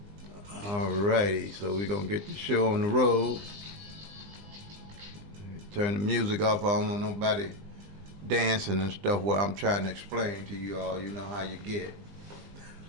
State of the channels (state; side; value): late; left; 20 ms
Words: All righty, so we're gonna get the show on the road. Turn the music off. I don't want nobody dancing and stuff while I'm trying to explain to you all. You know how you get.